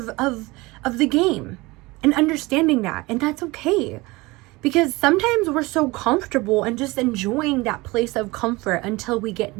the game, and understanding that, and that's okay. Because sometimes we're so comfortable and just enjoying that place of comfort until we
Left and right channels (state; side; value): quieter; left; 22.6 dB